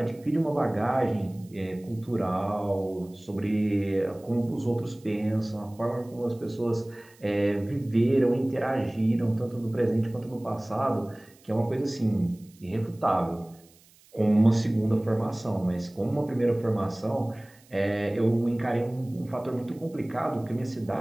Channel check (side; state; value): right; noise; hiss, 28 dB below the sound